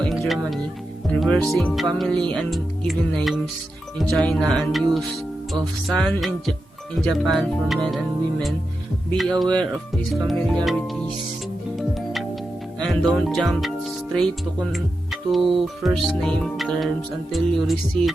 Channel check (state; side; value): normal; both; correlation 0.89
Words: in Germany, reversing family and given names in China, and use of san in Japan for men and women. Be aware of these familiarities and don't jump straight to first name terms until you receive